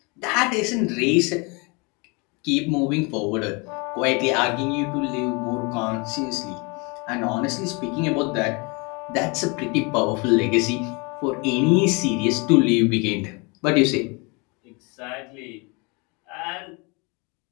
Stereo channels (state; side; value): quieter; right; 29.6 dB